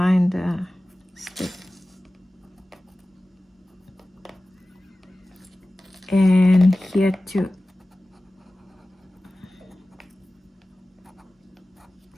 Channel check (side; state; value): both; normal; correlation 0.96